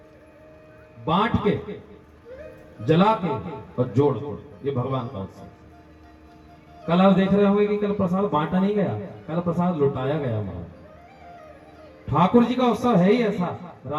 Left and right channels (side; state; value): both; identical; correlation 1.00